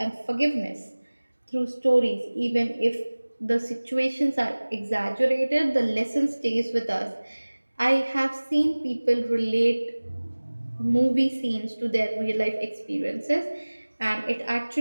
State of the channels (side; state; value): both; inverted; correlation -1.00